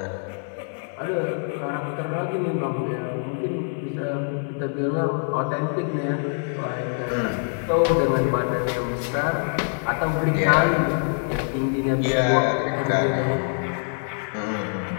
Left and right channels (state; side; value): silent; right; 57 dB below the other